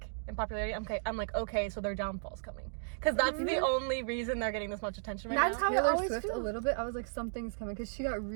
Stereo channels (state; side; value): silent; left; digital silence